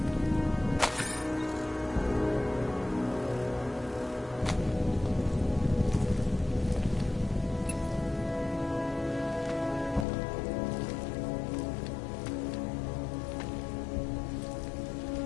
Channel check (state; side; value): drops out; right; at 10.1 s